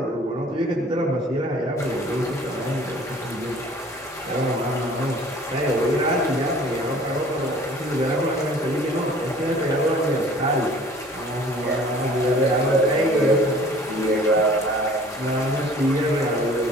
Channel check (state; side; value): normal; both; correlation 0.50